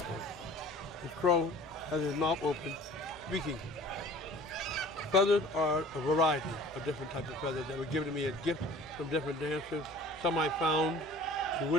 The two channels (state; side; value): noise; right; hum, 24 dB below the sound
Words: The crow has his mouth open, speaking. Feathers are a variety of different types of feathers that were given to me as gifts from different dancers. Some I found in